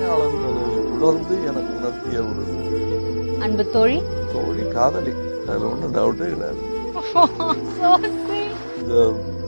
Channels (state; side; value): inverted; both; correlation -1.00